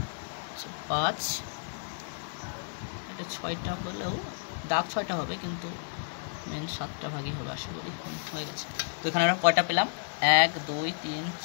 5, এটা 6টা হলেও দাগ 6টা হবে, কিন্তু মেন 7টা ভাগই হবে আশা করি। হয়ে গেছে। তো এখানে আমরা কয়টা পেলাম? 1 2 3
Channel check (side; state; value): right; silent; digital silence